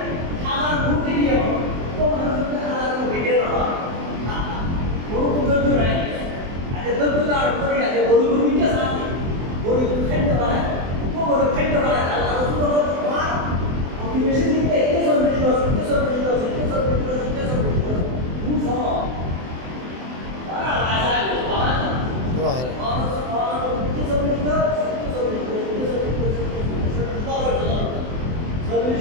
হাজার কোটি দিয়ে তো মানুষের হাজার কোটি দিয়ে হয় বড় ধৈর্য নাই। আজকে ধৈর্য আর করি আজকে বড় বড় মিথ্যা সাথে বড় খাদ্য বানায়, বড় খাদ্য বানায়। আল্লাহ রাসূল বলেন মোটিভেশন দিতে একে সবজি দশ খুব সহজ।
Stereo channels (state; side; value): late; left; 24 ms